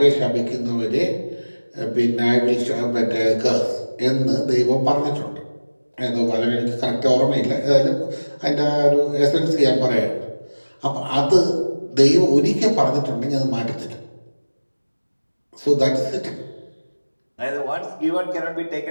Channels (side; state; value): both; inverted; correlation -1.00